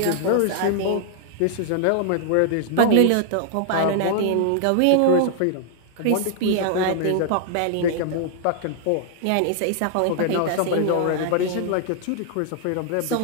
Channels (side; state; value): both; different; correlation -0.01